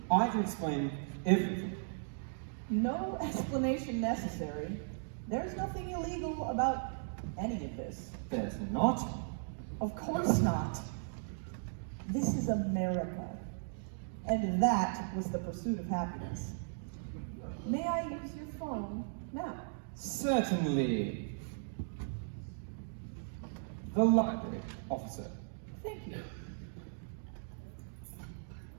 I can explain everything. no explanation necessary. There's nothing illegal about any of this. There's not. Of course not. This is America. And that was the pursuit of happiness. May I use your phone now? Certainly. The library, officer. Thank you.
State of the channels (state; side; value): silent; left; digital silence